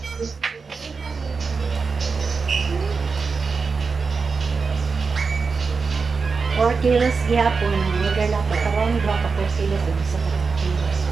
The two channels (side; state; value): left; quieter; 4.9 dB